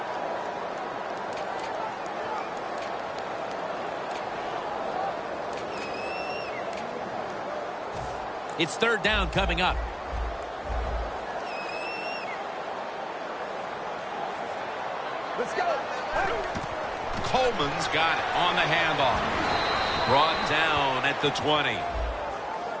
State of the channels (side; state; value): both; identical; correlation 1.00